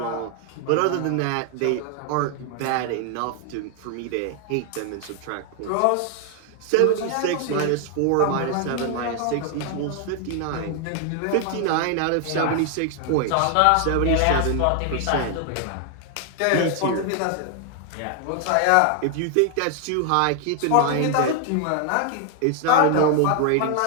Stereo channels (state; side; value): different; both; correlation 0.00